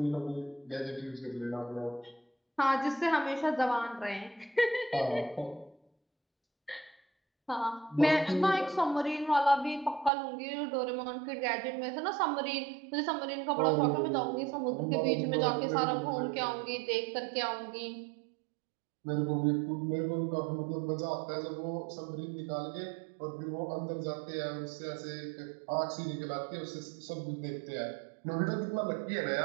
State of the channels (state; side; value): drops out; left; at 10.1 s